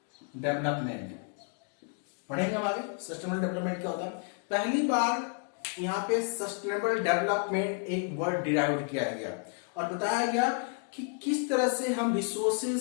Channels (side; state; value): right; quieter; 35.0 dB